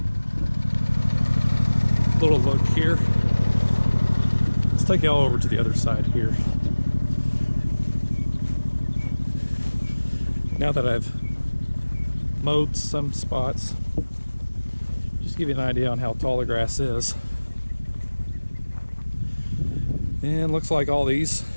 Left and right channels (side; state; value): both; inverted; correlation -1.00